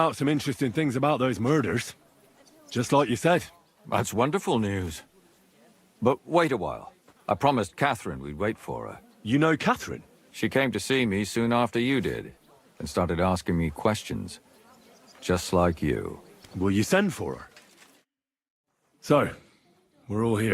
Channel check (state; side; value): identical; both; correlation 1.00